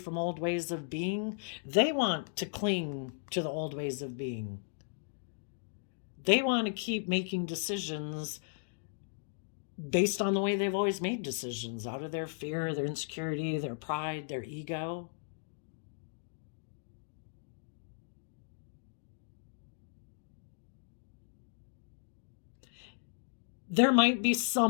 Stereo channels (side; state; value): right; silent; digital silence